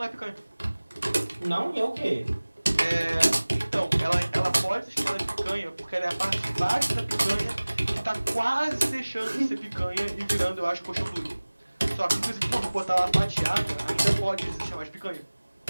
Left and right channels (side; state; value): both; inverted; correlation -1.00